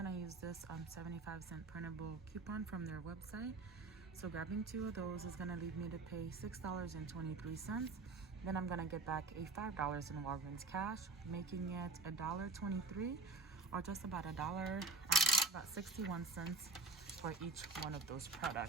use this 75-cent printable coupon from their website. So grabbing two of those is gonna leave me to pay $6.23. Then I'm gonna get back a $5 in Walgreens cash, making it $1.23, or just about about 61 cents for each one of those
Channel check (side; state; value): left; quieter; 3.5 dB